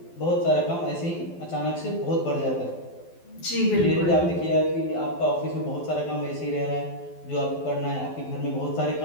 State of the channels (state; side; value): late; right; 12 ms